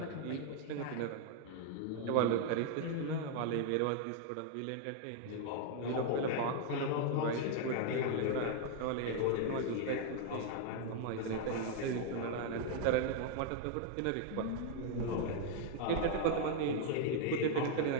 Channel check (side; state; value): both; different; correlation 0.00